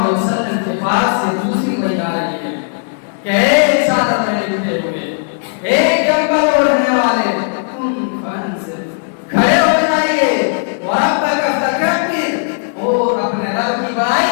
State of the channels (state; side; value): silent; right; 69 dB below the other